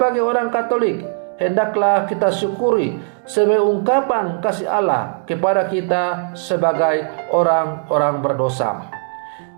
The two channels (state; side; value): silent; left; digital silence